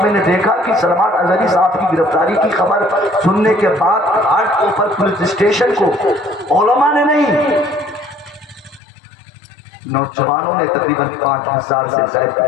میں نے دیکھا کہ سلمان اظہری صاحب کی گرفتاری کی خبر سننے کے بعد گھاٹ کے اوپر پولیس اسٹیشن کو علماء نے نہیں، نوجوانوں نے تقریباً 5000 سے زائد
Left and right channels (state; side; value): drops out; right; at 8.8 s